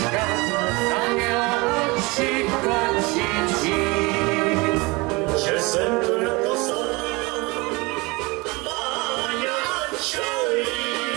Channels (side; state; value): left; quieter; 25.3 dB